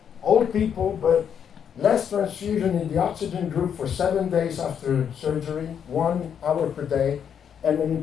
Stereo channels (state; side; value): quieter; right; 8.1 dB